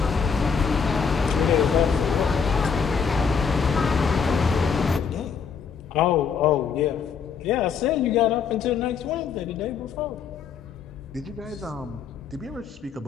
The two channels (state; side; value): quieter; right; 6.4 dB